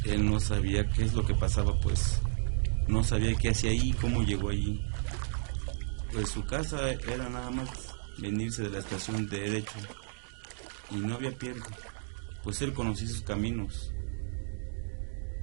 él no sabía qué es lo que pasaba, pues no sabía qué hacía ahí, cómo llegó allí. Pues su casa era nada más venirse de la estación de derecho y no había pierde, pues él conocía sus caminos.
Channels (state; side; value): silent; left; digital silence